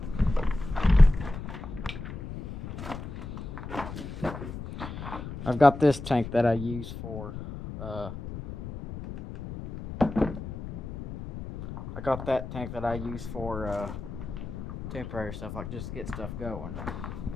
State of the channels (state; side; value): noise; left; rumble, 9 dB below the sound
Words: I've got this tank that I use for I got that tank that I use for temporary stuff, like just get stuff going.